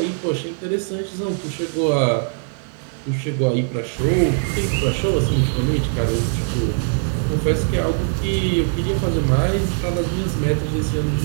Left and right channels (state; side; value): silent; left; 65 dB below the other